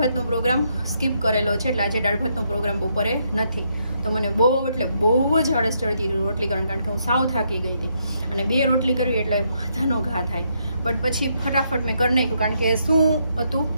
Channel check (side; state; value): both; inverted; correlation -0.76